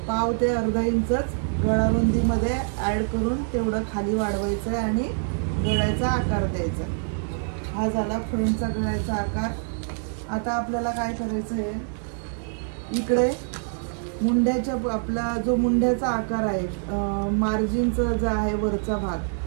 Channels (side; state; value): left; silent; digital silence